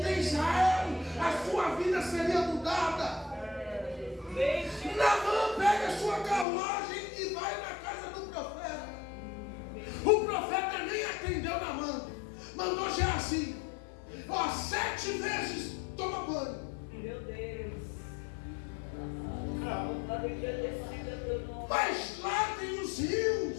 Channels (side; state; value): right; drops out; at 6.5 s